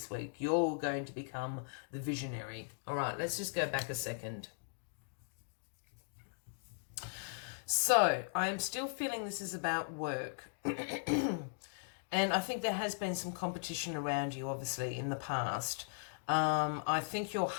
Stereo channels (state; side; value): silent; right; digital silence